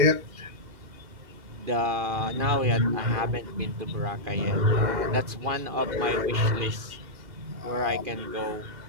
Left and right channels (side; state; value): left; late; 2.5 ms